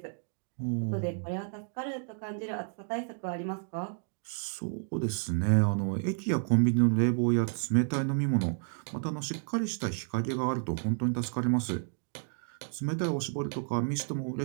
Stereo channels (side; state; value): left; silent; 57 dB below the other